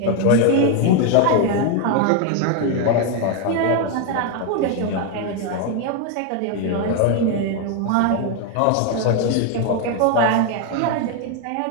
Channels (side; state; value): both; different; correlation 0.01